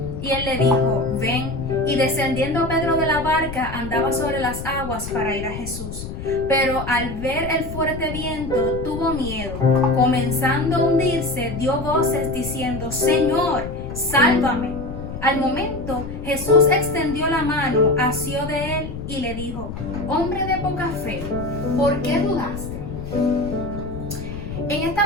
Y él le dijo, ven. Y descendiendo Pedro de la barca, andaba sobre las aguas para ir a Jesús. Pero al ver el fuerte viento, tuvo miedo. Comenzando a hundirse, dio voces diciendo, Señor, sálvame. Al momento, Jesús extendió la mano, asió de él y le dijo, hombre de poca fe, ¿por qué dudaste? En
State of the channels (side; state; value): left; noise; rumble, 8 dB below the sound